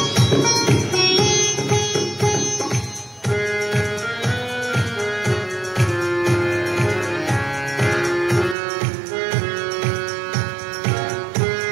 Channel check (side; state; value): left; drops out; at 8.6 s